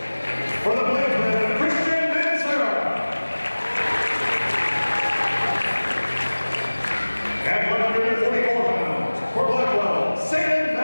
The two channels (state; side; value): inverted; both; correlation -1.00